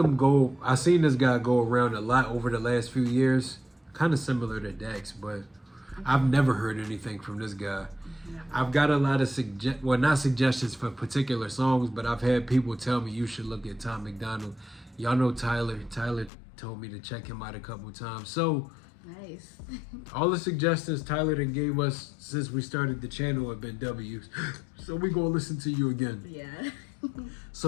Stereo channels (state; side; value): drops out; right; at 16.3 s